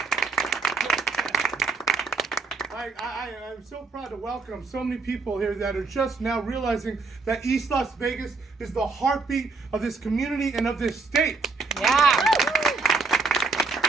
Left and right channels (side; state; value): left; quieter; 4.2 dB